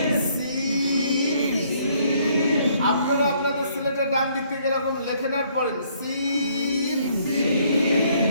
আপনারা আপনাদের সিলেটের ডান দিক থেকে এরকম লেখে নেওয়ার পরেন সিন।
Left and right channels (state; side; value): inverted; both; correlation -0.66